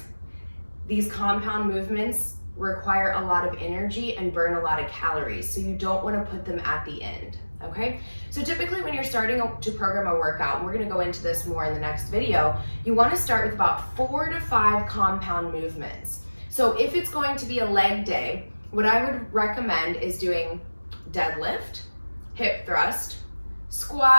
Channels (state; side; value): inverted; both; correlation -1.00